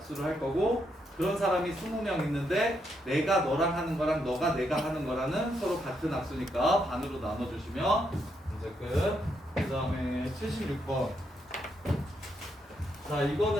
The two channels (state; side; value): normal; both; correlation 0.78